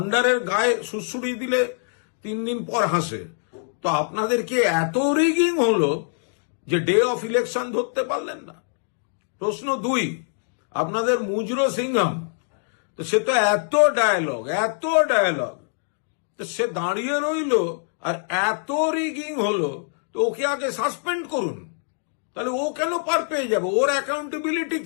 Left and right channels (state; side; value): silent; right; digital silence